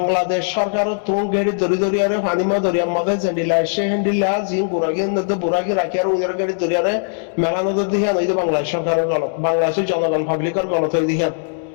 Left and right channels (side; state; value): right; silent; digital silence